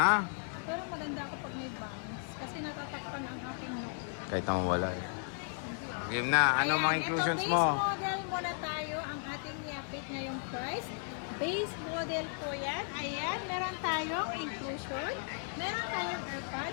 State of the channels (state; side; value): silent; right; 54 dB below the other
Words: Pero maganda ako pag may bangs. Kasi natatakpan ang aking look. Kahit naman wala eh. Game na. Ano mga inclusions ito, mo? Base model muna tayo. Ang ating i-update ngayong price. Base model po yan. Ayan. Meron tayong inclusion. Meron tayong